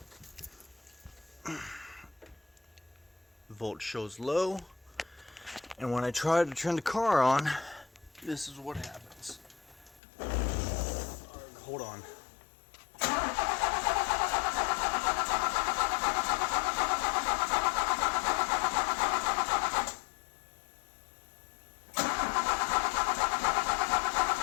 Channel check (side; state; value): right; drops out; at 10.0 s